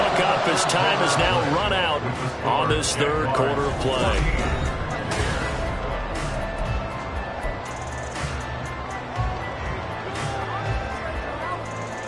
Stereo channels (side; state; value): both; identical; correlation 1.00